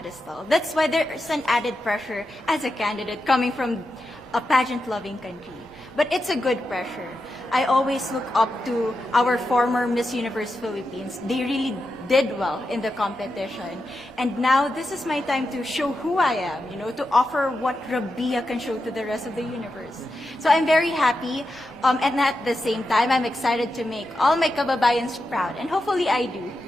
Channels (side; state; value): both; normal; correlation 0.88